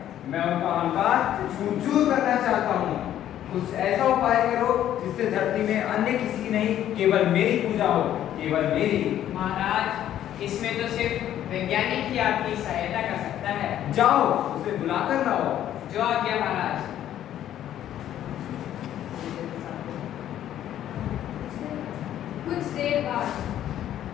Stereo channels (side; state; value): right; quieter; 11.5 dB